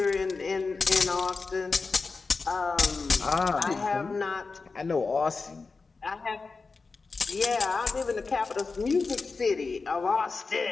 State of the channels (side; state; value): right; quieter; 4.3 dB